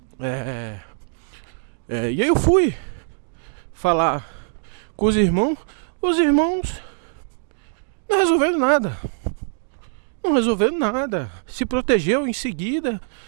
e aí eu fui falar com os irmãos não resolveram nada, se protegeu. Em seguida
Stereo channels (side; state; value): left; silent; digital silence